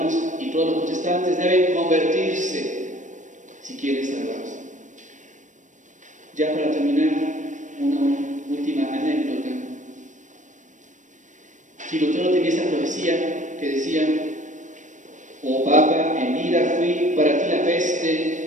y todos los protestantes deben convertirse si quieren salvarse. Ya para terminar, una última anécdota. Si Lutero tenía esa profecía que decía: oh Papa, en vida fui para ti la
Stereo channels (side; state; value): left; late; 0.36 ms